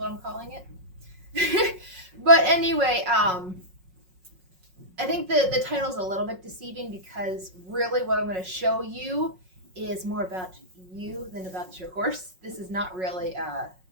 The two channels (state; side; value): late; left; 5.5 ms